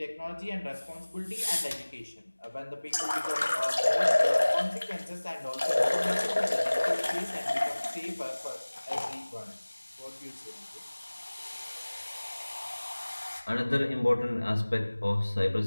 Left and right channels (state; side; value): inverted; both; correlation -1.00